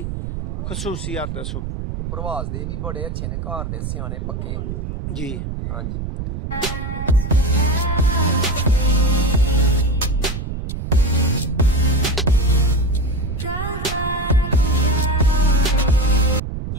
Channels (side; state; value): right; noise; rumble, 5 dB below the sound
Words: खसूसियत दसो। प्रवास दे भी बड़े अच्छे ने, घर दे सियाने पक्के जी। हाँ जी।